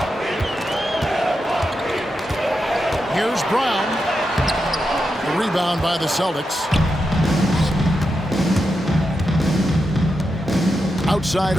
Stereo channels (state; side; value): normal; both; correlation 0.87